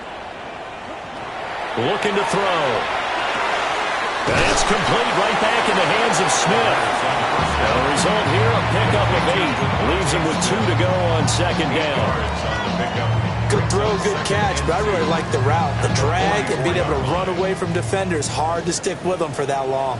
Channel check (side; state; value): both; identical; correlation 1.00